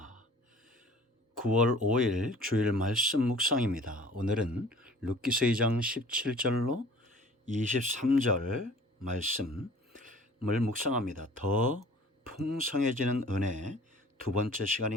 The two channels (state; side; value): normal; both; correlation 0.49